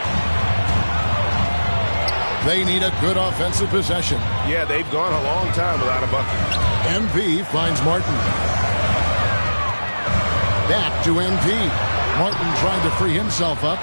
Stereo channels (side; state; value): both; inverted; correlation -1.00